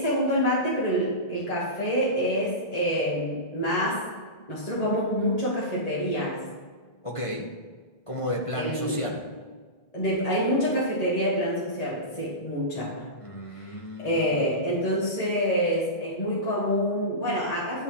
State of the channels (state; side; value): late; right; 1.5 ms